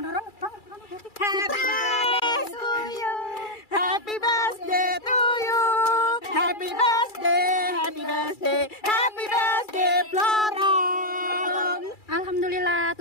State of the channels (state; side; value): late; right; 2.3 ms